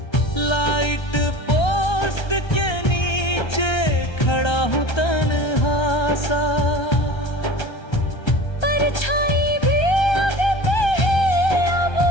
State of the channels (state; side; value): late; right; 1.3 ms